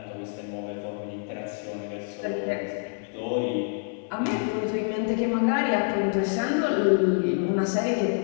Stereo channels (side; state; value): right; silent; 58 dB below the other